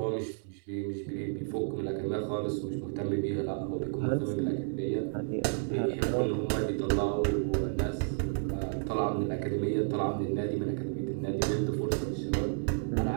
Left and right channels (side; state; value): left; silent; digital silence